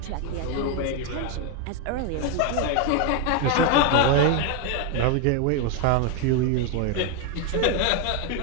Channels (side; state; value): both; different; correlation 0.01